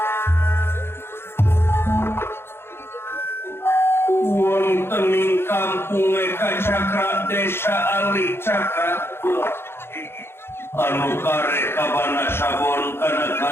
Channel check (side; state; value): right; late; 0.11 ms